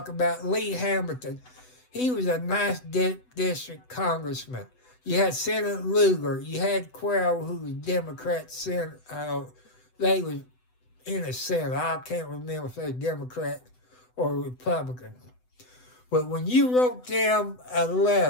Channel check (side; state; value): right; late; 8.0 ms